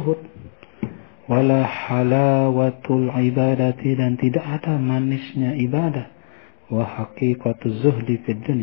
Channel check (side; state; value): right; silent; digital silence